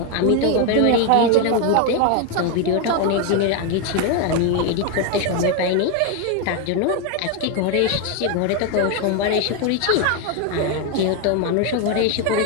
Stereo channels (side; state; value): both; different; correlation 0.01